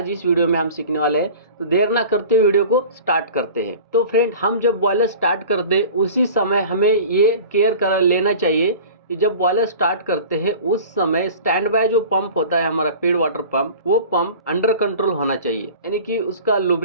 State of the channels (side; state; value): both; inverted; correlation -0.40